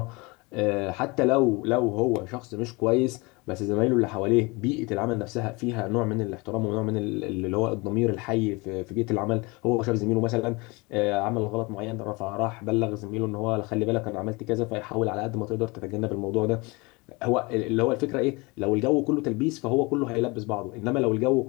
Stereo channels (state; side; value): quieter; right; 25.9 dB